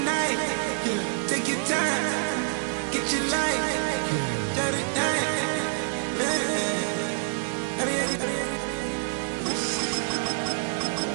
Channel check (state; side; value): silent; left; digital silence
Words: night. Take your time, get your life. Jot it down.